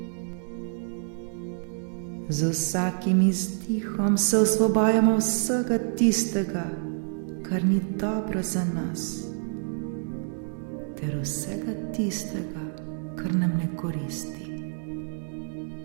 Z vsakim izdihom se osvobajamo vsega tistega, kar ni dobro za nas, ter vsega tistega, kar nam ne koristi.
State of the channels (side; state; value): left; silent; 60 dB below the other